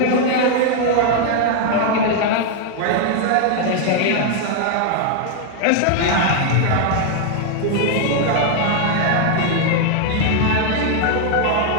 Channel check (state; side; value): different; both; correlation 0.00